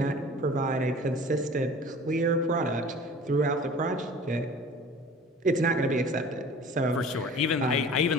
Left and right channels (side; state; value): both; normal; correlation 0.43